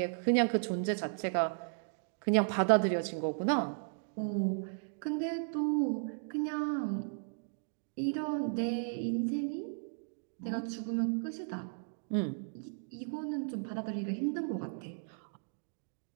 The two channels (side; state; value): left; silent; digital silence